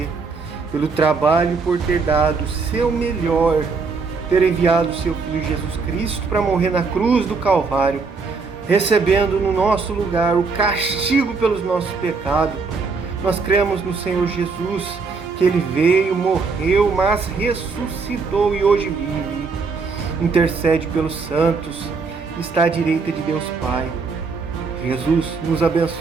pelo trabalho, por ter dado o seu melhor, ter enviado o seu Filho Jesus Cristo para morrer na cruz do Calvário, recebendo no nosso lugar o castigo pelos nossos pecados. Nós cremos no Senhor Jesus, que Ele veio, morreu, mas ressuscitou e hoje vive. Intercede pelos santos, está à direita de Deus Pai. Jesus, nos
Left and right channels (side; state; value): left; quieter; 4.6 dB